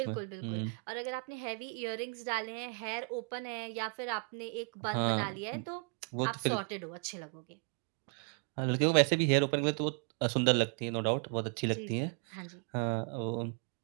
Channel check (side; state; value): left; quieter; 35.3 dB